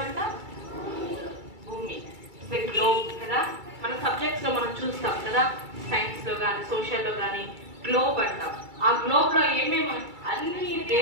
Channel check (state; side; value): late; left; 2.3 ms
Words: భూమి, గ్లోబ్ కదా. మన సబ్జెక్ట్స్ లో మనం చూస్తాం కదా, సైన్స్ లో కానీ సోషల్ లో కానీ గ్లోబ్ అంటాం. ఆ గ్లోబ్ లో ఏమేమి అన్ని